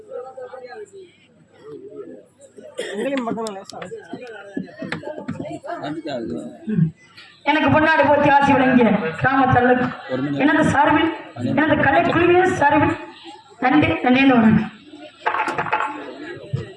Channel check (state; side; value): identical; both; correlation 1.00